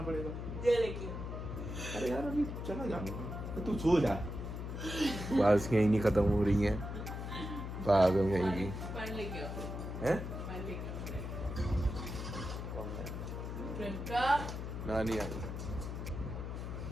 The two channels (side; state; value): left; noise; hum, 6 dB below the sound